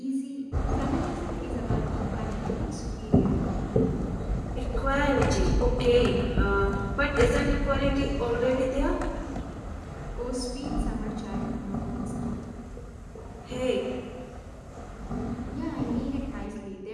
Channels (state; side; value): identical; both; correlation 1.00